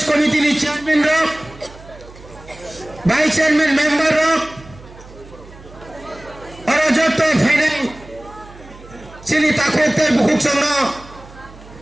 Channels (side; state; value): right; noise; hum, 20 dB below the sound